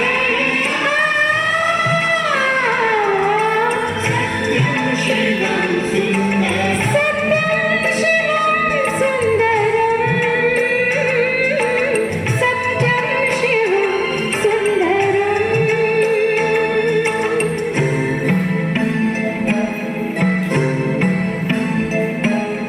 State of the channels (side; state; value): both; identical; correlation 1.00